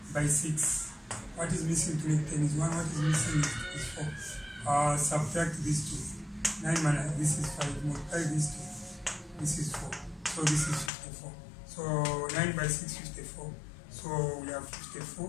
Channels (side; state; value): right; drops out; at 10.9 s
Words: by 6. What is missing to make 10 is 1. What is missing is 4. Subtract these two. 9 minus this is 5. Multiply these two. This is 4. So this is 54. So 9 by 6, 54. So we have